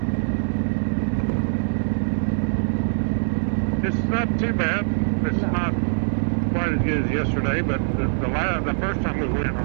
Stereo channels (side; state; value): left; silent; digital silence